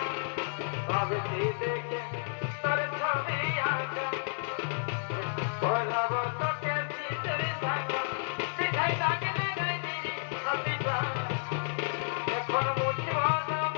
ভাবছি দেখে তোর ছবি আঁকা বলাবো তোকে সিঁদুর ভাঙা পিঠাই তাকে লাগাই দিই ছবিটা এখন মুছব না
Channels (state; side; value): silent; right; digital silence